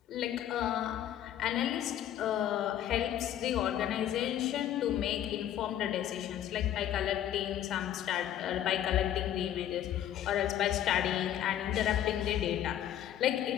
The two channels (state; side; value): quieter; right; 11.2 dB